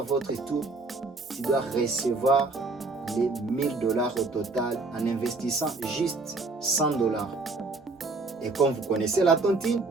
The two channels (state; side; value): quieter; left; 3.5 dB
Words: votre tour. Tu dois recevoir les 1000 $ au total en investissant juste 100 $. Et comme vous connaissez la tontine,